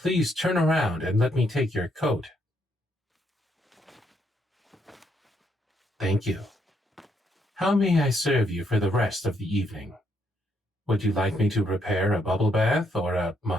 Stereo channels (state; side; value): normal; both; correlation 0.74